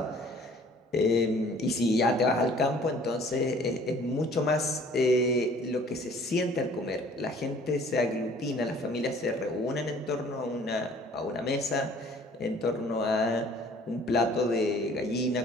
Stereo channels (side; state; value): both; normal; correlation 0.53